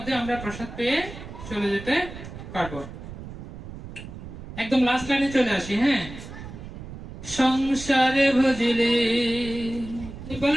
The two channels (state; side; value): noise; right; rumble, 12 dB below the sound